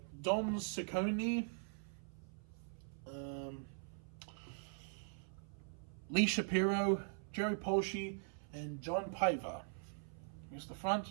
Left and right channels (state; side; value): silent; left; 50 dB below the other